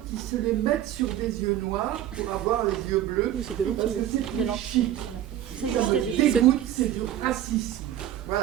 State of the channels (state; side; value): quieter; left; 11.8 dB